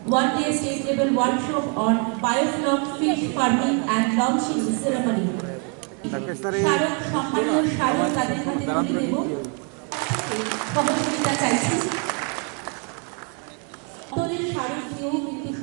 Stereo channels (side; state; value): left; quieter; 38.2 dB